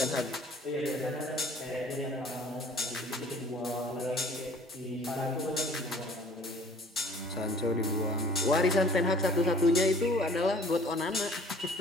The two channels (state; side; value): normal; both; correlation 0.51